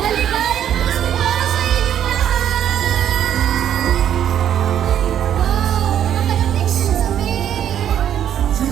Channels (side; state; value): left; quieter; 10.0 dB